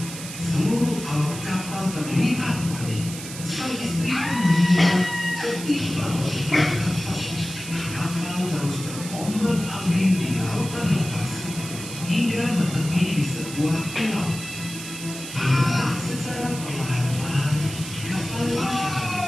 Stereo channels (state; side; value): noise; right; hiss, 11 dB below the sound